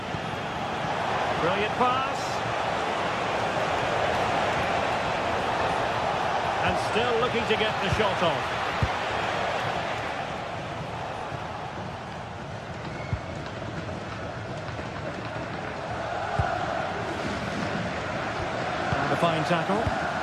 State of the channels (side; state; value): both; identical; correlation 1.00